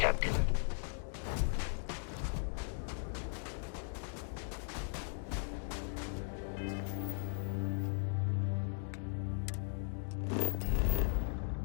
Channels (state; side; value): silent; right; 52 dB below the other